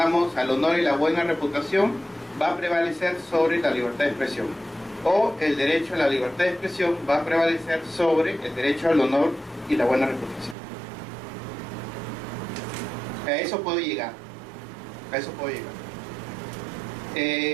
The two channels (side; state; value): left; drops out; at 10.6 s